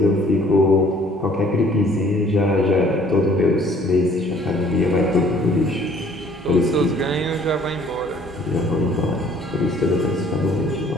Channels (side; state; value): both; normal; correlation 0.57